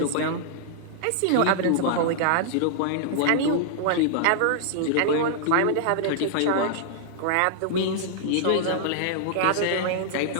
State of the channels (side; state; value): both; different; correlation -0.01